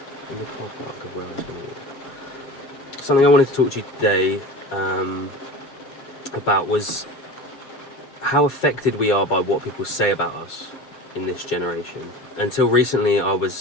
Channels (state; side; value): late; right; 7.5 ms